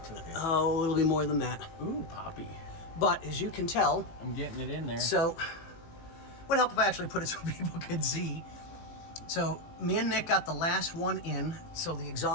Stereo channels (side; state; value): right; late; 18 ms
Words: It's okay. Oh, it'll be more than that. Ooh, Poppy. But as you can tell, I'm getting it in there. So, would help if I actually put it so people could see. So, me and Nick got the last one in. So the